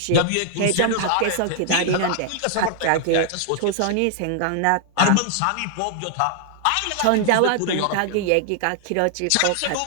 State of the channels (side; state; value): both; different; correlation 0.00